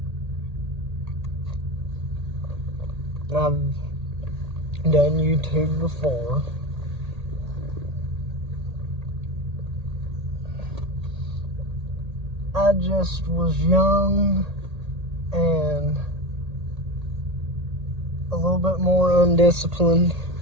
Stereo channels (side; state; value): left; late; 1.8 ms